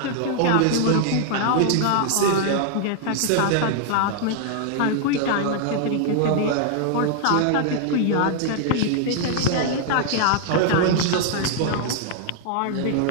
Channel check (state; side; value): different; both; correlation 0.00